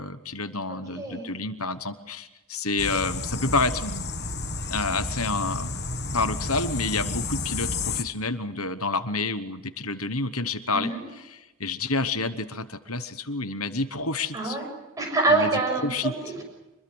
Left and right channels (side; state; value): both; normal; correlation 0.14